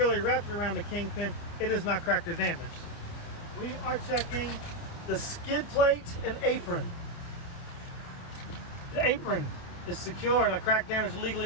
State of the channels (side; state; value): right; late; 29 ms